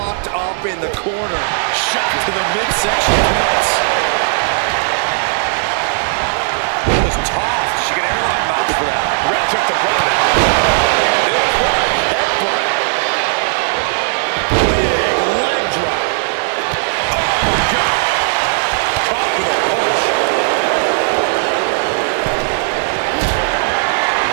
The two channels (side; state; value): left; silent; digital silence